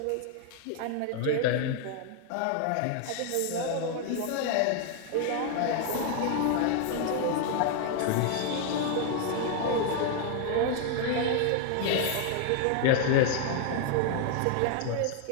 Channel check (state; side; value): different; both; correlation 0.00